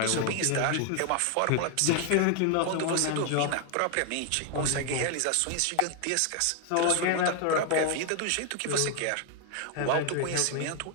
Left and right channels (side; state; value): both; different; correlation 0.00